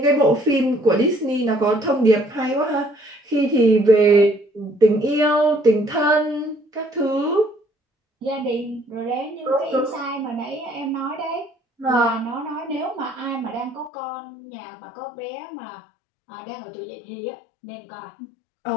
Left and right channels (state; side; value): drops out; right; at 13.9 s